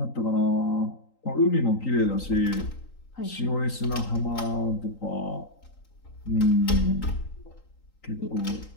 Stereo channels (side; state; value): right; late; 3.9 ms